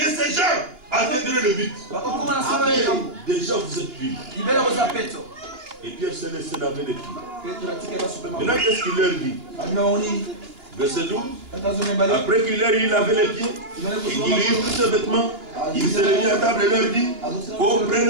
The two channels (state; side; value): late; left; 2.9 ms